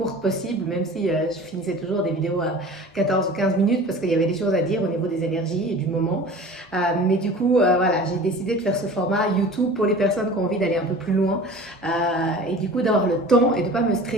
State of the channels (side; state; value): both; normal; correlation 0.40